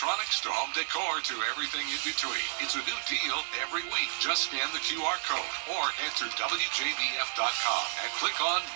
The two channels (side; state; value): left; silent; digital silence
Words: to home decor to everything in between. It's a new deal every week. Just scan the QR code or head to WJBF.com and click on